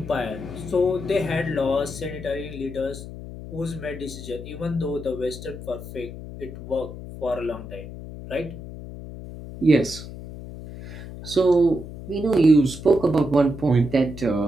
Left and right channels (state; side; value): noise; left; hum, 12 dB below the sound